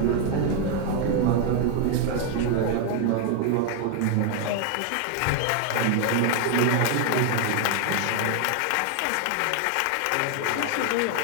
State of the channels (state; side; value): different; both; correlation 0.00